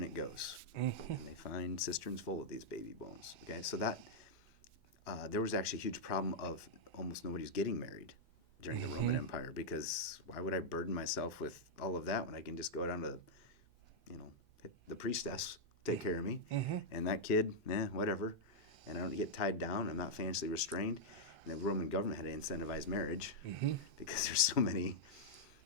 it goes. Mm-hmm. And they find cisterns full of these baby bones. Okay, so that there was actually a huge problem of almost nobody's getting married during the Roman Empire, because why would I burden myself with all of that when I can just go down to the priestess take care of me, and that kid, whatever, and I don't get tied down, I'm not financially restrained. And the Roman government had to incentivize marriage because there's so many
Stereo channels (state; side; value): normal; both; correlation -0.06